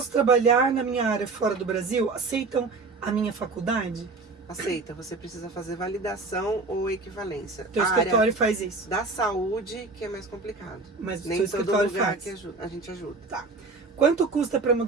trabalhar na minha área fora do Brasil? Aceitam a minha faculdade? Aceita, você precisa fazer validação ou equivalência. Teu A área escritório faz isso. da saúde que é mais complicado. Mas o Nem seu todo escritório lugar faz. que a gente ajuda. Tá. Quanto custa para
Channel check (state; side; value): quieter; left; 3.8 dB